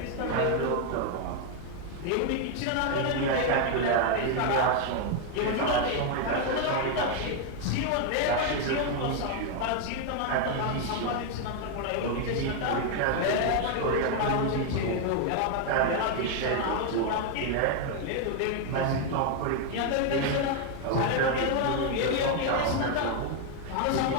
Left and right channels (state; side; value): different; both; correlation 0.01